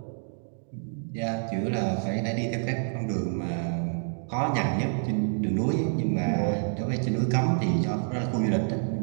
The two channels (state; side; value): silent; left; 58 dB below the other